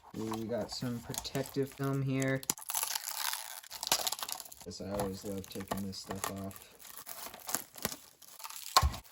Ooh, we got some protective film here. I always love taking this stuff off.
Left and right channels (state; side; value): identical; both; correlation 1.00